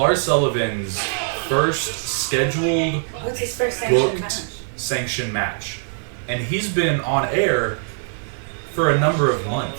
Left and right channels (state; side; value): silent; left; 64 dB below the other